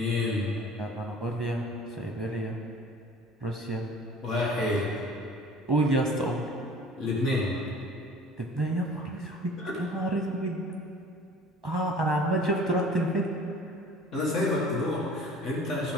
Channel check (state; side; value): normal; both; correlation 0.46